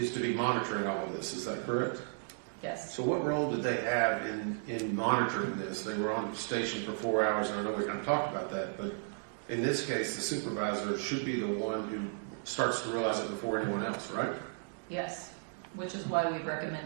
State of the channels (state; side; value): silent; left; digital silence